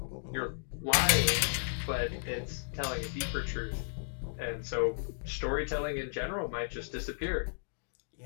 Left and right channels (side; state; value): right; silent; digital silence